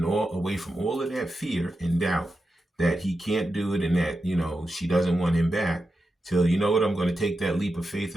away from all of that fear and doubt that he can't do it and that, she doesn't want him back till, you know what, I'm going to take that leap of faith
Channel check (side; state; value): both; normal; correlation 0.89